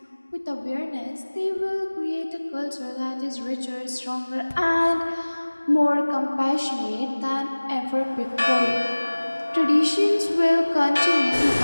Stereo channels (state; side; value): inverted; both; correlation -1.00